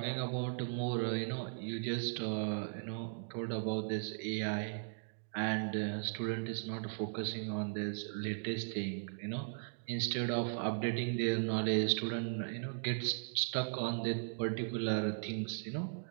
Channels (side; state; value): left; silent; digital silence